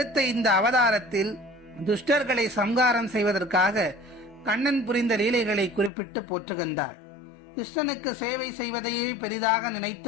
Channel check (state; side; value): drops out; right; at 5.9 s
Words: இந்த அவதாரத்தில் துஷ்டர்களை சம்ஹாரம் செய்வதற்காக கண்ணன் புரிந்த லீலைகளை குறிப்பிட்டு போற்றுகின்றாள். கிருஷ்ணனுக்கு சேவை செய்வதையே பெரிதாக